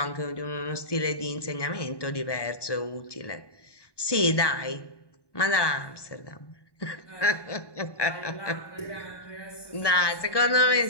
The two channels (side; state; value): right; late; 1.2 ms